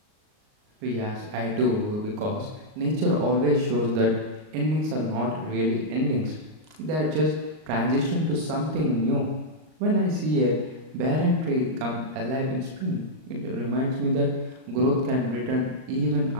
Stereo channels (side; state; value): left; late; 38 ms